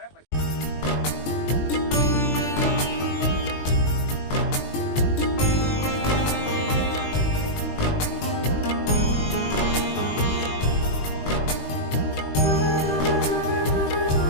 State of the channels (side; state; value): right; late; 20 ms